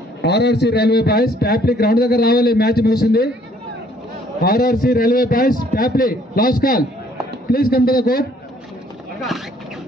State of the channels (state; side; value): normal; both; correlation 0.62